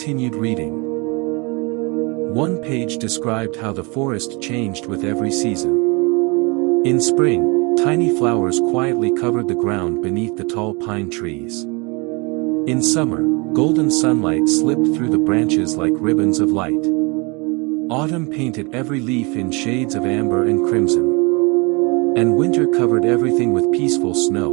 reading. One page described how the forest changed with every season. In spring, tiny flowers quietly covered the ground beneath the tall pine trees. In summer, golden sunlight slipped through the branches like ribbons of light. Autumn painted every leaf in shades of amber and crimson. And winter covered everything with peaceful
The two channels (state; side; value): quieter; left; 29.3 dB